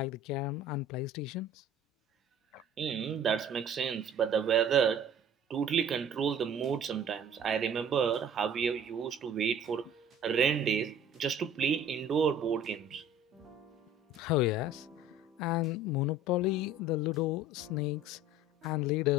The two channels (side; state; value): both; normal; correlation 0.47